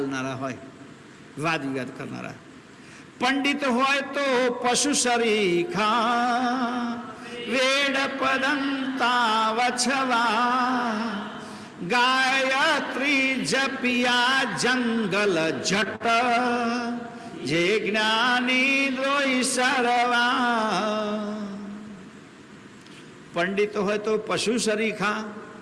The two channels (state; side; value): identical; both; correlation 1.00